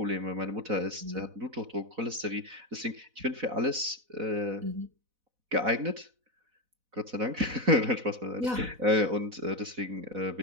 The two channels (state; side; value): late; left; 4.1 ms